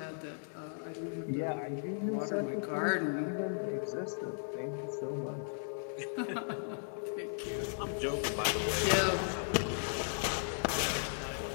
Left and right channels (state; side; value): silent; right; digital silence